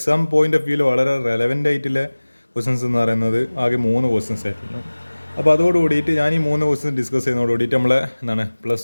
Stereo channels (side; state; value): both; inverted; correlation -1.00